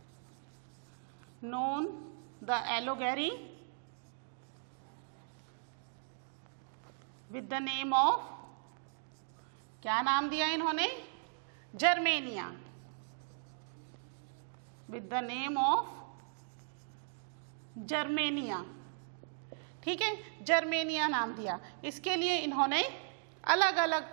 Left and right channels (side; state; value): left; silent; digital silence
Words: known the Allegory with the name of, क्या नाम दिया इन्होंने, Germania, with the name of Germania, ठीक है, जर्मेनिया नाम दिया। इसके लिए इन्होंने अलग